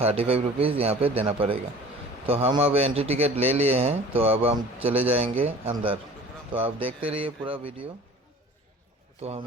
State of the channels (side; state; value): both; normal; correlation 0.44